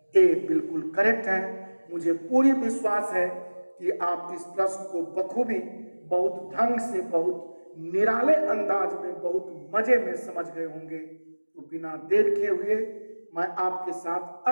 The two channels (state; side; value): inverted; both; correlation -1.00